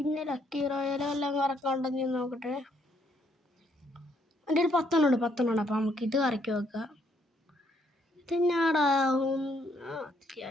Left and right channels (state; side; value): normal; both; correlation 0.71